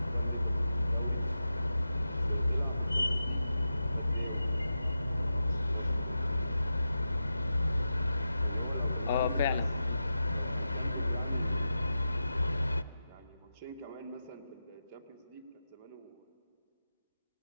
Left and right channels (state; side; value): inverted; both; correlation -0.90